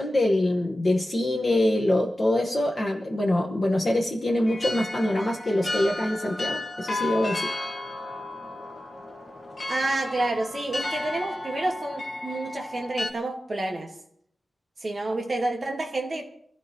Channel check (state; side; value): normal; both; correlation 0.93